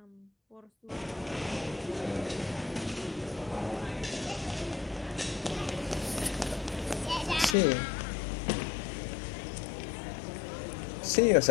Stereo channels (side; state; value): right; drops out; at 7.6 s